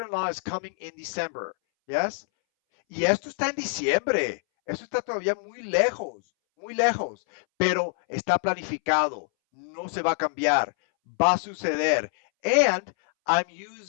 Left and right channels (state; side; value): silent; right; 61 dB below the other